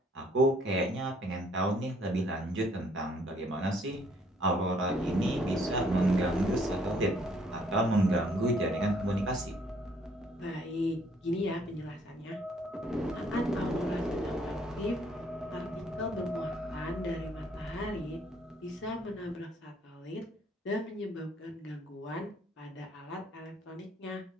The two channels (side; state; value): both; normal; correlation 0.64